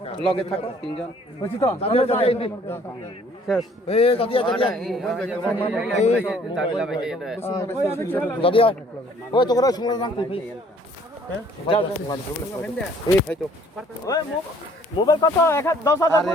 লগে থাকো তিনজন হইছি তো শেষ এই দাদিয়া ওই তো করে শুনলে নাম তুই এই ভাই তো ওই মোবাইল কত 10,000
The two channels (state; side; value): normal; both; correlation 0.58